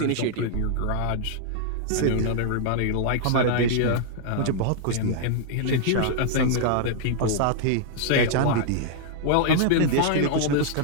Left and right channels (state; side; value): different; both; correlation -0.01